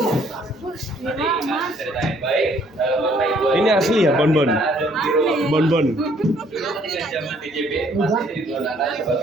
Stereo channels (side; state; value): both; normal; correlation 0.63